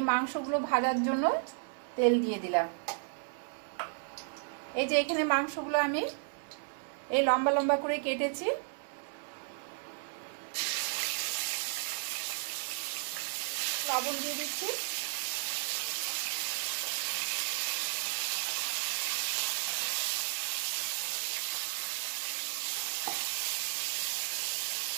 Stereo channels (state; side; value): silent; left; 55 dB below the other